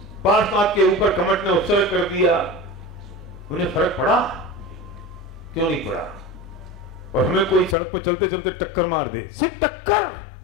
पार्श्वनाथ के ऊपर कमट ने उपसर्ग कर दिया, उन्हें फर्क पड़ा? क्यों नहीं पड़ा? और हमें कोई सड़क पर चलते चलते टक्कर मार दे, सिर्फ टक्कर,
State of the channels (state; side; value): drops out; right; at 7.8 s